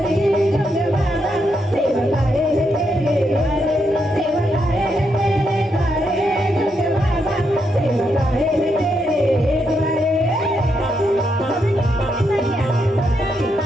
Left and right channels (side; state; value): both; normal; correlation 0.80